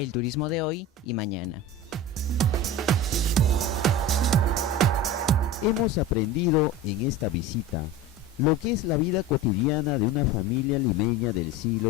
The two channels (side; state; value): both; normal; correlation 0.31